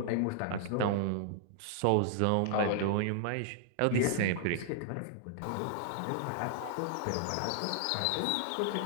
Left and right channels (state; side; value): different; both; correlation 0.00